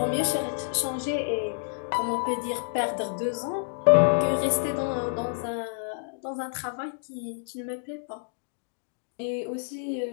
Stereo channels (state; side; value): silent; right; digital silence